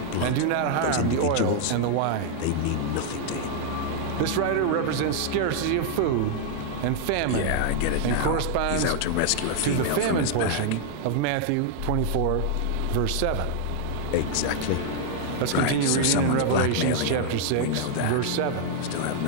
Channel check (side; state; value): both; different; correlation 0.00